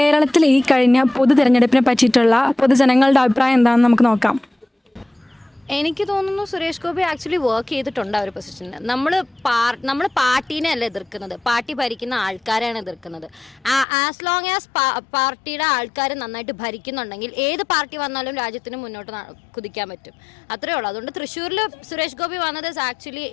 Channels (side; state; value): right; drops out; at 13.9 s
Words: ഈ കഴിഞ്ഞ പൊതു തിരഞ്ഞെടുപ്പിനെ പറ്റിയിട്ടുള്ള പൊതുജനങ്ങളുടെ അഭിപ്രായം എന്താണെന്ന് നമുക്ക് നോക്കാം. എനിക്ക് തോന്നുന്നു സുരേഷ് ഗോപി ആക്ച്വലി വർക്ക് ചെയ്തിട്ടുണ്ട് ആ ഒരു പൊസിഷനിൽ. നമ്മൾ പാർട്ടീനെ അല്ല എതിർക്കുന്നത്, പാർട്ടി ഭരിക്കുന്ന ആൾക്കാരാണ് എതിർക്കുന്നത്. ആസ് ലോങ് ആസ് പാർട്ടിയുടെ ആൾക്കാർ നന്നായിട്ട് ഭരിക്കുന്നുണ്ടെങ്കിൽ ഏത് പാർട്ടി വന്നാലും രാജ്യത്തിന് മുന്നോട്ട് കുതിക്കാൻ പറ്റും. അത്രേ ഉള്ളൂ. അതുകൊണ്ട് തൃശ്ശൂരിൽ സുരേഷ് ഗോപി വന്നത് ആക്ച്വലി